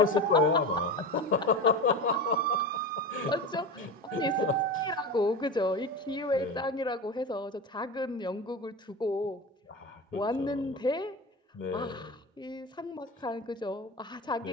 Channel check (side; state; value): both; normal; correlation 0.26